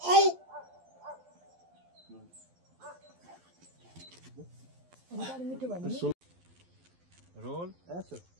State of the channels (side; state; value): left; late; 12 ms